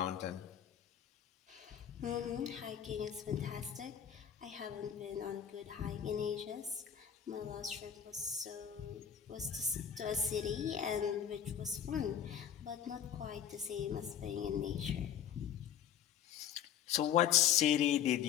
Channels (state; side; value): quieter; right; 9.1 dB